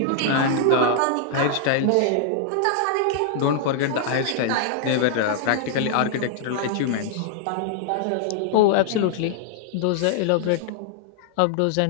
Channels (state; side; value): different; both; correlation -0.01